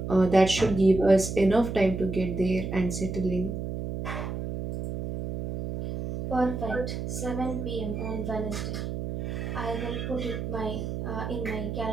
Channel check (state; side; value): noise; right; hum, 5 dB below the sound